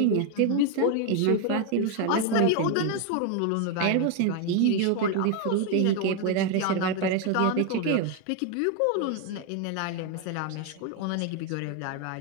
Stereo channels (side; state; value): both; different; correlation 0.01